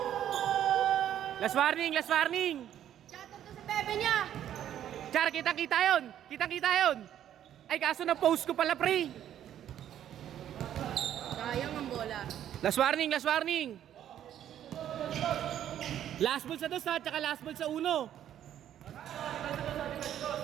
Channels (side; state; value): left; quieter; 10.8 dB